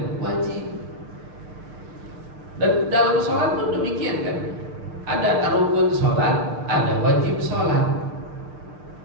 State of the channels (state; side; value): late; left; 6.9 ms